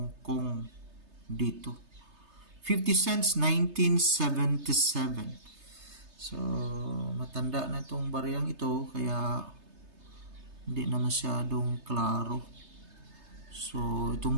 Kong dito. 50 cents, 1977. So, matanda na itong baryang ito, kaya hindi na masyadong klaro. So, itong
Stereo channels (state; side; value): late; left; 3.3 ms